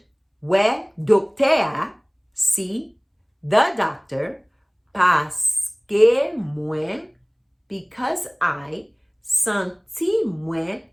we docteur, see the doctor, parce que moi, because I Senti moi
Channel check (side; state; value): both; identical; correlation 1.00